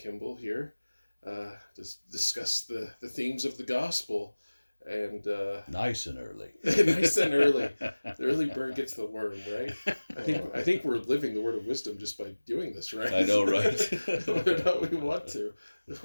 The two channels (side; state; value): both; inverted; correlation -1.00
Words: here, to discuss the themes of the gospel. And nice and early. Nice and early. The early bird gets the worm, right? I think we're living the word of wisdom just by doing this, right? I know, right? Whether or not we want to.